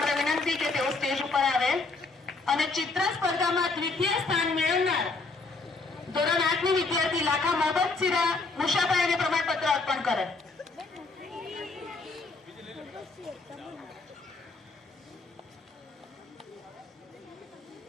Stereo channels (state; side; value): quieter; right; 3.8 dB